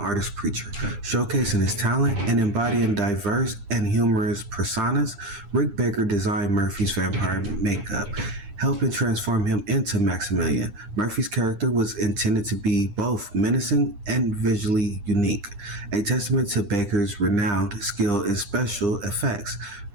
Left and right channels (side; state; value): left; late; 9.8 ms